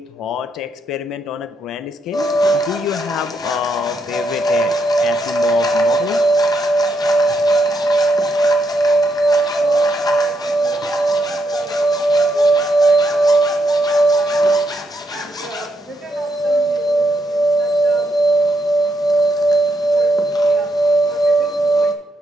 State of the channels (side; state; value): both; normal; correlation 0.78